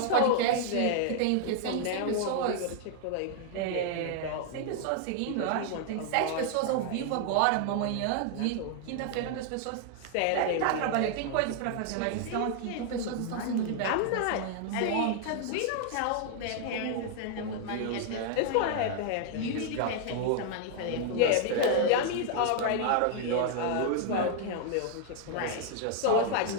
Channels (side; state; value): both; different; correlation 0.00